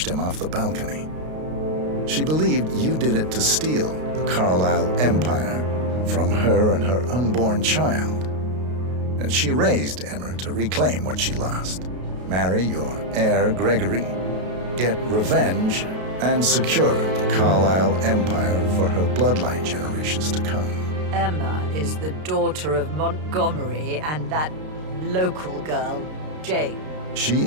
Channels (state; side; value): late; left; 32 ms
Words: him off the balcony. She believed you did it to steal the Carlisle empire from her and her unborn child. And she raised Emmer to reclaim what she lost, marry your heir, Gregory, get revenge, and secure the Carlisle empire for her bloodline generations to come. Emma is the daughter of Montgomery and that local girl, Jane. She